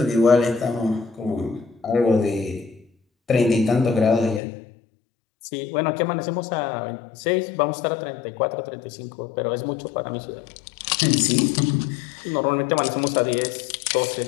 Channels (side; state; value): right; drops out; at 4.4 s